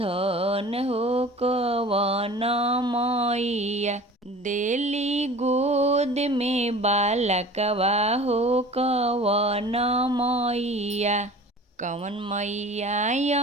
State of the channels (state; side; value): normal; both; correlation 0.42